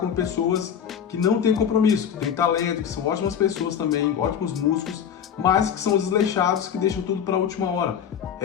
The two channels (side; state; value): right; quieter; 8.2 dB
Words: pessoas que não têm compromisso, que têm talento, que são ótimas pessoas também, ótimos músicos, mas que são desleixados, que deixam tudo para a última hora.